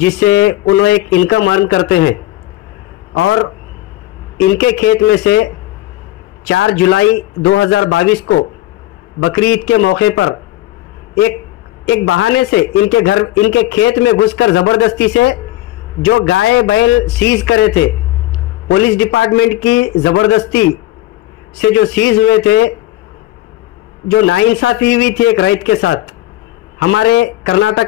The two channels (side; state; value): right; quieter; 16.0 dB